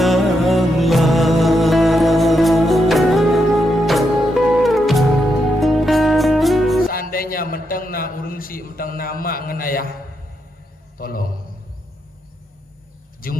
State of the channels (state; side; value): normal; both; correlation 0.82